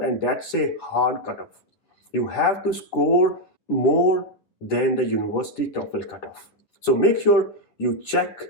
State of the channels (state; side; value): late; right; 9.7 ms